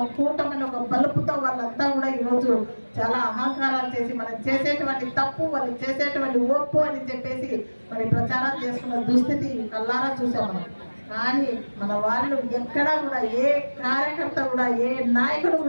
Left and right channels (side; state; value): both; inverted; correlation -1.00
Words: కూటమని ఒక బలుపుతో వాళ్ళంతా కూడా ఈరోజు చాలా అహంకారాలు చేసి మనం చేసేటువంటి తప్పు, వాళ్ళు చేసేటువంటి ఒప్పు అని చెప్పేసి మరి ప్రచారం చేసుకున్న దుస్థితి కల్లారా చూసాం మనం. కానీ మన వాళ్ళు ఎక్కడా కూడా ఏ కార్యకర్త కూడా, ఏ నాయకుడు